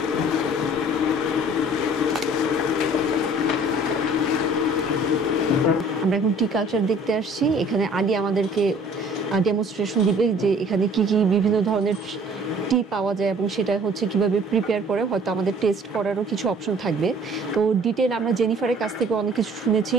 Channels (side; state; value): both; normal; correlation 0.52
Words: আমরা এখন টি culture দেখতে আসছি। এখানে আলী আমাদেরকে demonstration দিবে যে এখানে কি কি বিভিন্ন ধরনের টি পাওয়া যায় এবং সেটা হচ্ছে কিভাবে প্রিপেয়ার করে, হয়তো আমাদের টেস্ট করারও কিছু অপশন থাকবে। তো ডিটেল আমরা জেনিফারের কাছ থেকে অনেক কিছু শুনেছি।